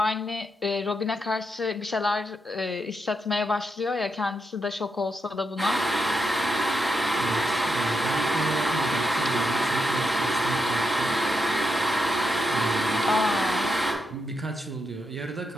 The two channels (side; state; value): both; normal; correlation 0.83